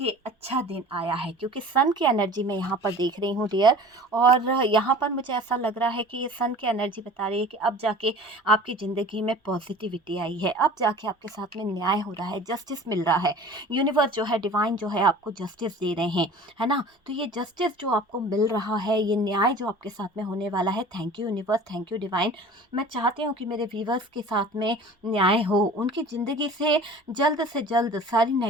अच्छा दिन आया है क्योंकि सन की एनर्जी मैं यहाँ पर देख रही हूँ डियर। और यहाँ पर मुझे ऐसा लग रहा है कि ये सन की एनर्जी बता रही है कि अब जाके आपकी ज़िंदगी में पॉजिटिविटी आई है। अब जाके आपके साथ में न्याय हो रहा है, जस्टिस मिल रहा है। यूनिवर्स जो है, डिवाइन जो है आपको जस्टिस दे रहे हैं, है ना? तो ये जस्टिस जो आपको मिल रहा है, ये न्याय जो आपके साथ में होने वाला है, thank you universe, thank you divine. मैं चाहती हूँ कि मेरे व्यूअर्स के साथ में न्याय हो। उनकी ज़िंदगी से जल्द सारी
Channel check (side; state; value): both; normal; correlation 0.42